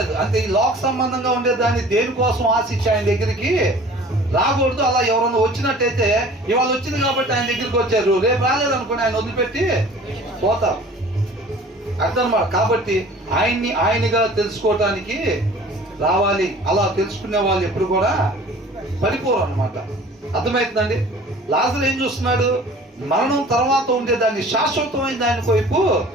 అంతే. ఈ లోక సంబంధంగా ఉండేదాన్ని దేనికోసం ఆశించి ఆయన దగ్గరికి రాకూడదు. అలా ఎవరన్నా వచ్చినట్టయితే ఇవాళ వచ్చింది కాబట్టి ఆయన దగ్గరికి వచ్చారు, రేపు రాలేదనుకోండి ఆయన వదిలిపెట్టి పోతారు. అర్థం మాట. కాబట్టి ఆయనగా తెలుసుకోవటానికి రావాలి. అలా తెలుసుకునే వాళ్ళు ఎప్పుడు కూడా పడిపోరు అన్నమాట. అర్థమవుతుందండి? లాజరు ఏం చూస్తున్నాడు? మరణం తర్వాత ఉండేదాన్ని శాశ్వతమైన దాని వైపు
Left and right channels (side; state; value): both; normal; correlation 0.47